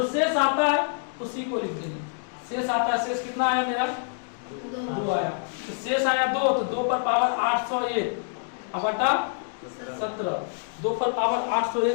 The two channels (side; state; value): right; silent; digital silence